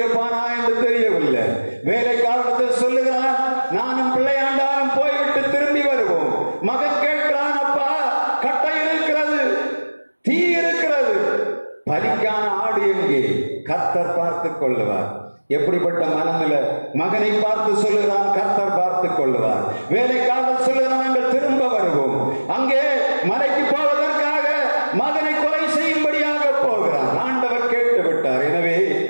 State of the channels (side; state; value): both; inverted; correlation -1.00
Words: என்று தெரியவில்லை. வேலைக்காரத்தில் சொல்லுகிறான், நானும் பிள்ளையாண்டாலும் போய்விட்டு திரும்பி வருவோம். மகன் கேட்கிறான், அப்பா கட்டை இருக்கிறது, தீ இருக்கிறது, பலிக்கான ஆடு எங்கே? கர்த்தர் பார்த்துக் கொள்ளுவார். எப்படிப்பட்ட மனநிலை! மகனை பார்த்து சொல்லுகிறான், கர்த்தர் பார்த்துக் கொள்ளுவார். வேலைக்காரர் சொல்லுகிறான், நாங்கள் திரும்ப வருவோம். அங்கே மலைக்கு போவதற்காக மகனை கொலை